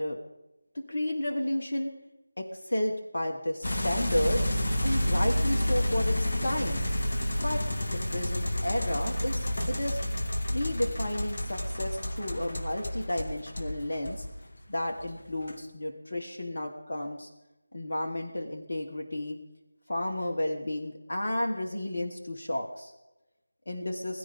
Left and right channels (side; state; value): both; inverted; correlation -0.97